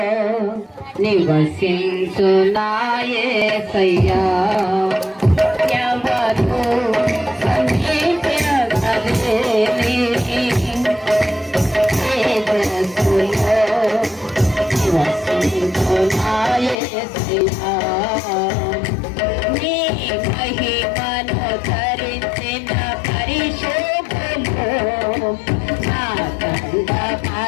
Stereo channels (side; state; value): right; drops out; at 16.8 s